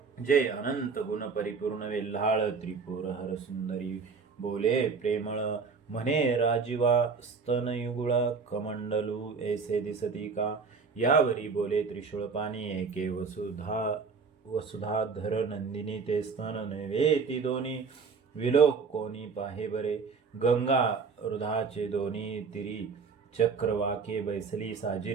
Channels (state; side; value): quieter; left; 5.2 dB